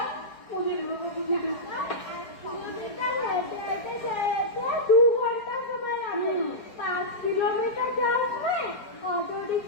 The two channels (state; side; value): late; right; 4.8 ms